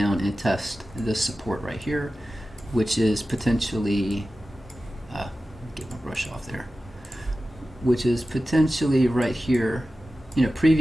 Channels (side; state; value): both; normal; correlation 0.94